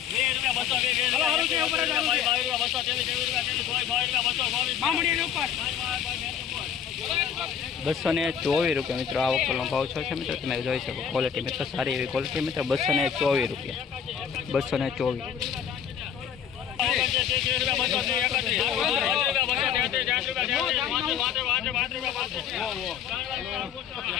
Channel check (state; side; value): quieter; right; 8.3 dB